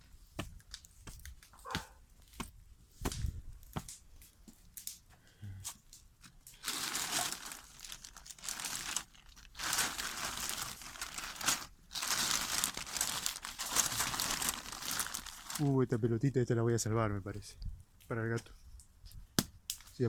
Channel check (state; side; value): identical; both; correlation 1.00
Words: Esta pelotita, esta la voy a salvar, me parece. Para el gato. Sí,